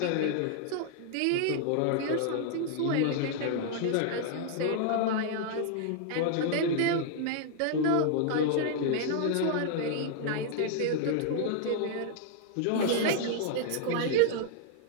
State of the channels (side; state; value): both; different; correlation -0.01